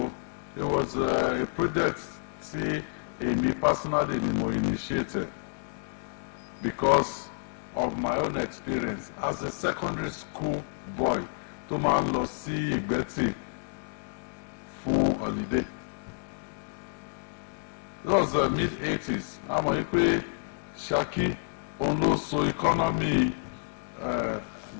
it was a project tí èmi personally ni mo initiated because of my own experience as a secondary school boy tó máa ń lọ sí Ìgbẹ́tì fún holiday. It was the mid-80s. Àmọ́ yìí pé Ṣakí òun ló so economy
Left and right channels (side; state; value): right; silent; 58 dB below the other